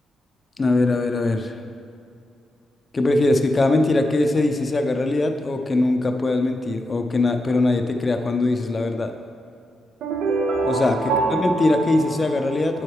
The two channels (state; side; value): normal; both; correlation 0.86